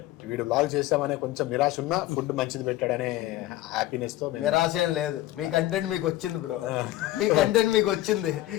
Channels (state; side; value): quieter; right; 15.9 dB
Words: వీడు బ్లాగ్ చేస్తామనే కొంచెం నిరాశ ఉన్నా ఫుడ్ మంచిది పెట్టాడనే హ్యాపీనెస్ తో నిరాశ ఏం లేదు. మీ కంటెంట్ మీకు వచ్చింది బ్రో, మీ కంటెంట్ మీకు వచ్చింది.